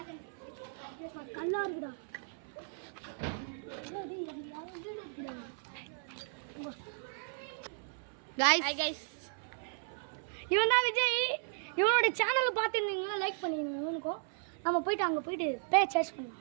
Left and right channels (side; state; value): left; silent; 54 dB below the other